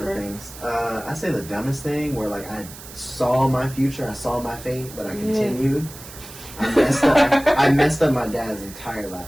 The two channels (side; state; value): right; noise; hiss, 16 dB below the sound